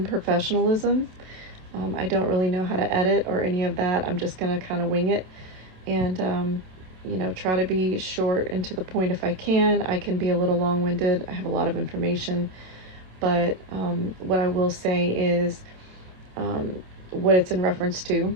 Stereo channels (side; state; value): left; late; 27 ms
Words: I don't really know how to edit or any of that. I'm just going to kind of wing it and try to be short and to the point if I can. I can be a little long-winded. I have a lot of information, but what I will say is what it's in reference to